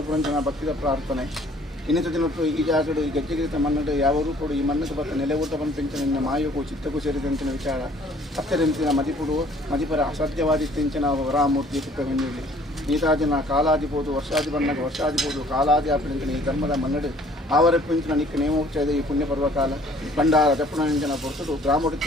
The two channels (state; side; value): normal; both; correlation 0.56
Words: ಭಕ್ತಿದ ಪ್ರಾರ್ಥನೆ ಇನ್ನಿತ ದಿನಟ್ಟು ಈ ಜಾಗಡು ಈ ಗೆಜ್ಜೆಗಿರಿತ ಮನ್ನಡು ಯಾವ ರೂಪಡು ಈ ಮಣ್ಣಕ್ಕೆ ಬತ್ತ ನೆಲೆ ಊಟ ಪಂಪಿಂಚಿನ ನಿನ್ನ ಮಾಯಗೂ ಚಿತ್ತಕ್ಕೂ ಸೇರಿದಂಚಿನ ವಿಚಾರ ಹತ್ತಿರಂಚಿನ ಮದಿಪುಡು ಮದಿಪರ ಅಸಾಧ್ಯವಾದಿತ್ತಿಂಚಿನ ವರಾಮೂರ್ತಿ ಕುಪ್ಪೆಂಜಲಿ ನೀತಾದಿನ ಕಾಲಾದಿಬೋದು ವರ್ಷಾದಿ ಬಣ್ಣಗ ವರ್ಷಾದಿಬೋದು ಕಾಲಾದಿ ಆಪಿಂಚಿನ ಈ ಧರ್ಮದ ಮನ್ನಡು ಆವರಪ್ಪಿಂಚಿನ ನಿಕ್ಕ ನೇಮೋಚ್ಚದ ಈ ಪುಣ್ಯ ಪರ್ವಕಾಲ ಭಂಡಾರ ದಪ್ಪುಣಂಚಿನ ಪೊರ್ತುಡು